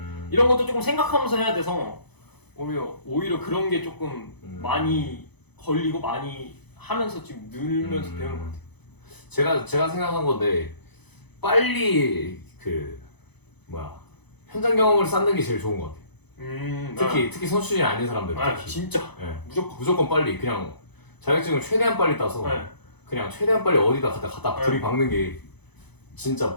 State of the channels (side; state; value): right; late; 0.99 ms